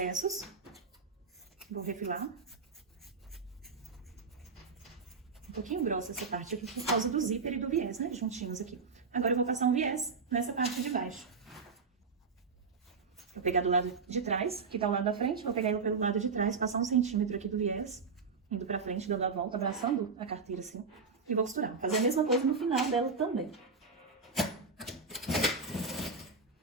Vou refilar. Um pouquinho grossa essa parte aqui, por causa do zíper e do viés, né? Juntinhos aqui. Agora, eu vou passar um viés nessa parte de baixo. Vou pegar do lado de trás, que tá o lado da frente. Vou pegar ele pelo lado de trás, passar 1 centímetro aqui do viés. Indo pra frente, dando a volta, abraçando a carteira assim. E vou costurar. Fazer a mesma coisa no final dela também.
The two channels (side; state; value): left; quieter; 4.8 dB